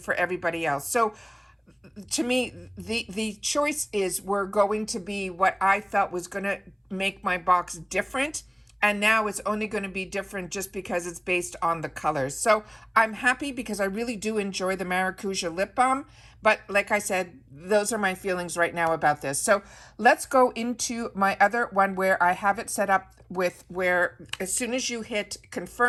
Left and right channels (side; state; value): both; identical; correlation 1.00